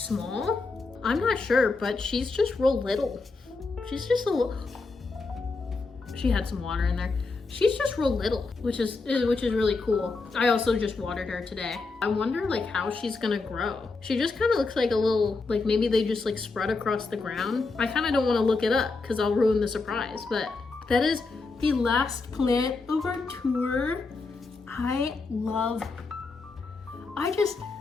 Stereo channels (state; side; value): quieter; right; 3.9 dB